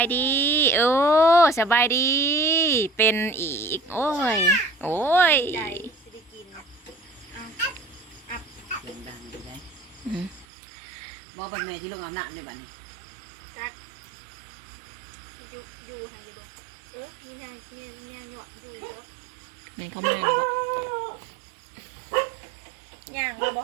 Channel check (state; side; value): drops out; left; at 10.5 s